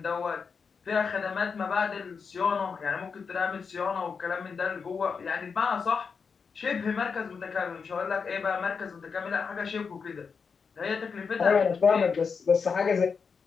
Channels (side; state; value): right; quieter; 5.6 dB